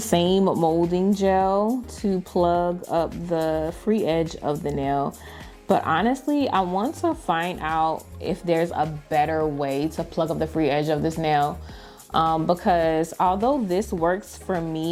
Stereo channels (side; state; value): both; identical; correlation 1.00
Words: molding gel to plug up the free edge of the nail. But honestly, I want to find out if there's a better way to plug up the free edge of this nail. Because although this works for